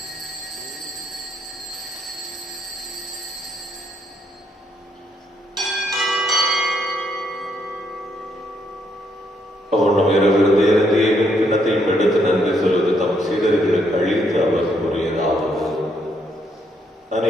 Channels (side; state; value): both; normal; correlation 0.73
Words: அவனும் இரவிருந்த இறந்தியின் கிண்ணத்தையும் எடுத்து நன்றி செலுத்தி தம் சீடர்களுக்கு அழித்து அவர் கூறியதாவது: